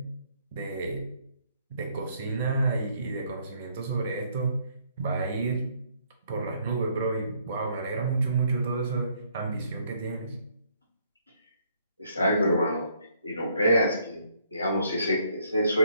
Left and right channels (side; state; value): both; inverted; correlation -0.68